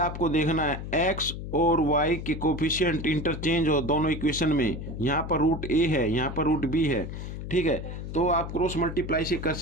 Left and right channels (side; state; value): left; noise; hum, 8 dB below the sound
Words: देखना है x और y के कोफिशिएंट इंटरचेंज हो दोनों इक्वेशन में, यहाँ पर √a है, यहाँ पर √b है। ठीक है, तो आप क्रॉस मल्टीप्लाई से कर